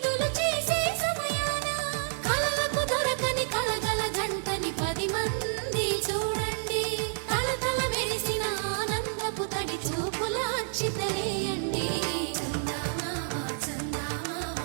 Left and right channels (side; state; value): left; silent; digital silence